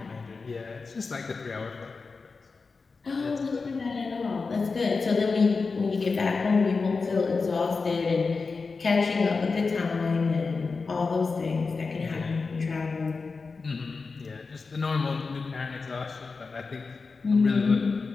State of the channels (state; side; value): quieter; right; 4.4 dB